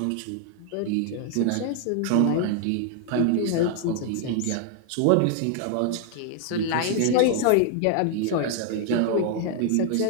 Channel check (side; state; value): both; different; correlation 0.00